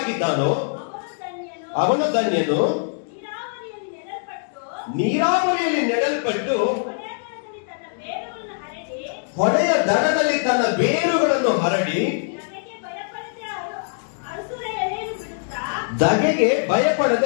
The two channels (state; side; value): silent; right; digital silence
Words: ಅವನು ಧನ್ಯನು. ನೀರಾವರಿಯಲ್ಲಿ ನೆಡಲ್ಪಟ್ಟು ಹೊಳೆಯ ದಡದಲ್ಲಿ ತನ್ನ ಬೇರುಗಳನ್ನು ಹರಡಿ ಧಗೆಗೆ